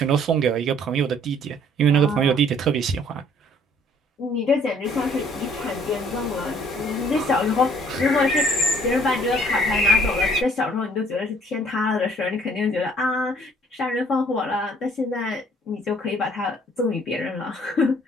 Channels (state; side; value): normal; both; correlation 0.59